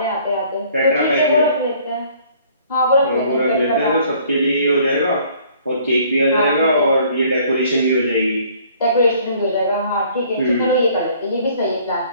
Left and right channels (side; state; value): both; inverted; correlation -0.58